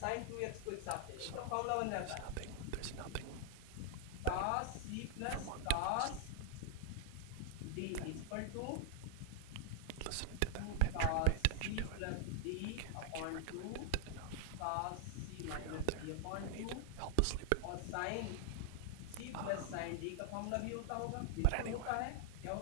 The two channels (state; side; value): different; both; correlation 0.00